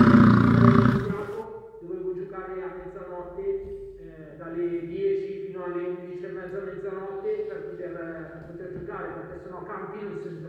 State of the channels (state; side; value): identical; both; correlation 1.00